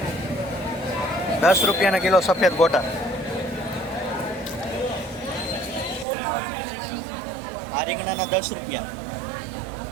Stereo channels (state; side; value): drops out; left; at 6.1 s